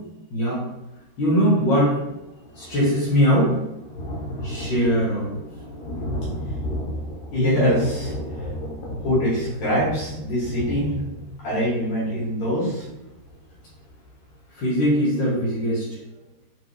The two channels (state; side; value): late; right; 13 ms